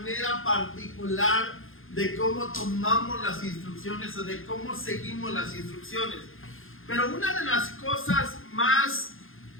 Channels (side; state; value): right; late; 0.59 ms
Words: particular de cómo tomamos las instrucciones o de cómo seguimos las instrucciones. Pero una de las cosas más